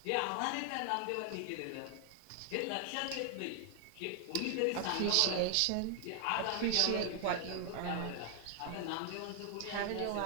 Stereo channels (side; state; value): both; different; correlation 0.00